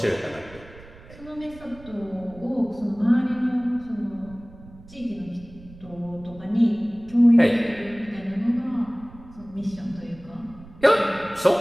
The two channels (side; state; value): right; noise; rumble, 20 dB below the sound